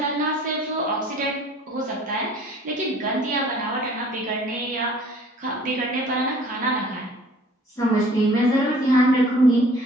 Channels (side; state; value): both; normal; correlation 0.52